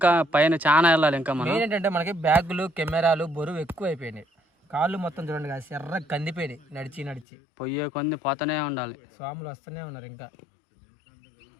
పైన చాలా వెళ్ళాలి. ఇంకా మనం ఏంటంటే మనకి బ్యాగులు, కెమెరాలు బరువు ఎక్కువ అయిపోయినాయి. కాళ్ళు మొత్తం చూడండి కదా, ఎర్ర కందిపోయినాయి నడిచి నడిచి. పొయ్యే కొన్ని పోతూనే ఉండాలి. స్వాములు వస్తూనే ఉన్నారు ఇంకా.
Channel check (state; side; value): drops out; right; at 7.2 s